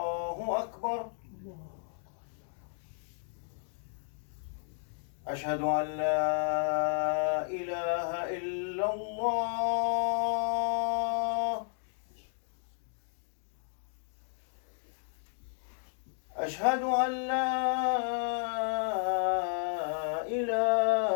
أكبر أشهد أن لا إله إلا الله أشهد أن لا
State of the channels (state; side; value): silent; right; digital silence